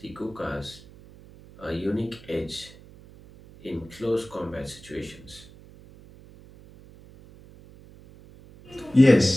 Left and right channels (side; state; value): right; noise; hum, 21 dB below the sound